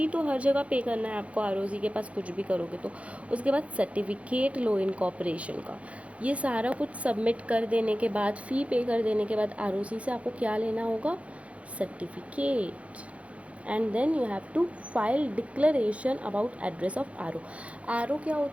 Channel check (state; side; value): late; left; 0.064 ms